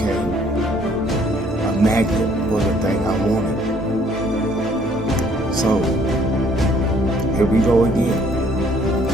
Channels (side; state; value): both; normal; correlation 0.62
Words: a magnet for the thing I wanted. So here we go again.